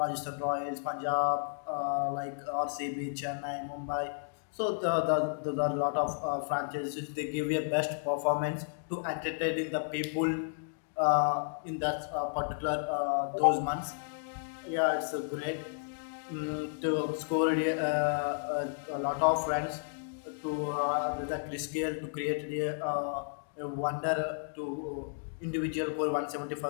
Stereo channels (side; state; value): right; silent; digital silence